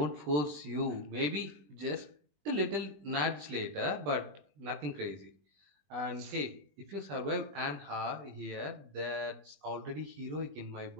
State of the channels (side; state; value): left; late; 20 ms